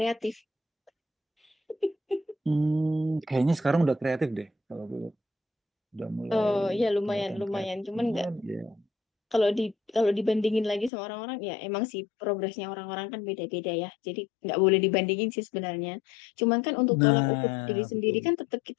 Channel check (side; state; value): right; drops out; at 10.9 s